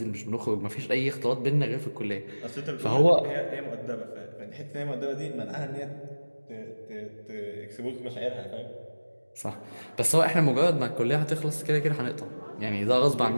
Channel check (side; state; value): both; inverted; correlation -1.00